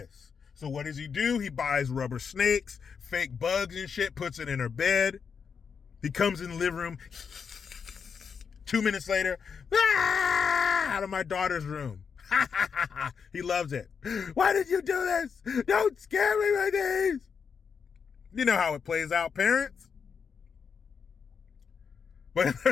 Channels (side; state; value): right; quieter; 6.3 dB